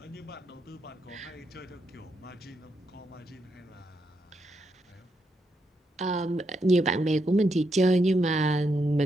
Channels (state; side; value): normal; both; correlation 0.81